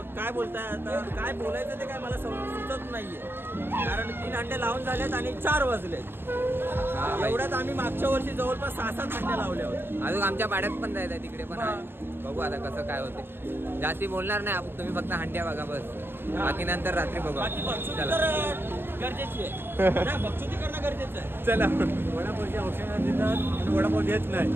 काय बोलताय आता, काय बोलायचं ते काय मला सुचत नाहीये. कारण 3 अंडे लावून झालेत आणि 4 वाजलेत. एवढ्यात आम्ही मागच्या वर्षी जवळपास 6-7 अंडे लावले होते. अजून आमच्या पाड्यात पण जायचं तिकडे पण आहे. बघू आता कसं काय होते. जास्ती बोलणार नाही आपण, तुम्ही फक्त हंड्या बघा बस. बाकी नंतर रात्री बघू. बाकी बक्षुती तर गरजेची आहे. नाही, बक्षुती करणं गरजेचं आहे. चला. वडापावची औषधं देतात आणि वडापाव देत नाही.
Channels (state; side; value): late; left; 0.10 ms